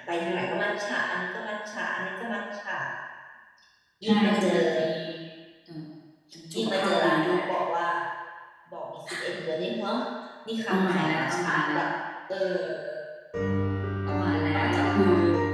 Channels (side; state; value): both; identical; correlation 1.00